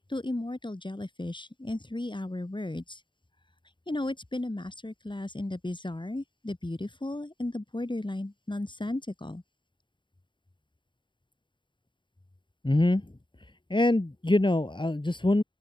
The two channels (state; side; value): late; right; 0.23 ms